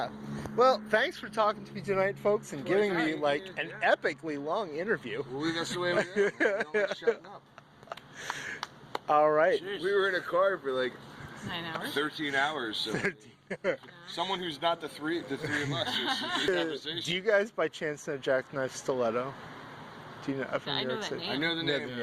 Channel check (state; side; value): identical; both; correlation 1.00